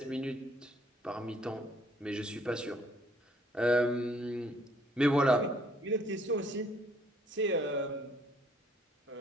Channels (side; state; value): both; normal; correlation 0.63